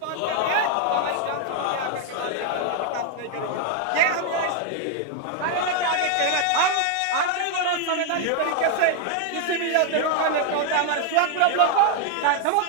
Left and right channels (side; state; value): both; different; correlation 0.00